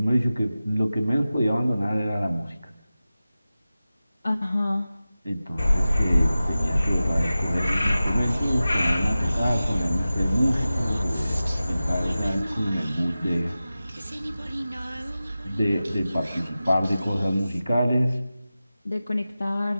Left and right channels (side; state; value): both; inverted; correlation -0.95